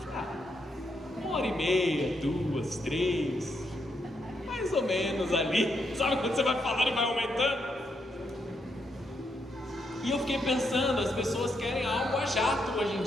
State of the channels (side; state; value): both; normal; correlation 0.79